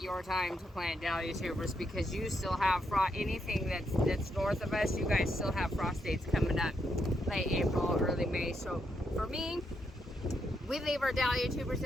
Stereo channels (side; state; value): both; normal; correlation 0.79